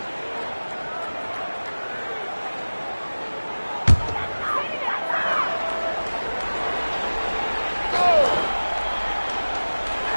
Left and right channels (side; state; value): both; inverted; correlation -1.00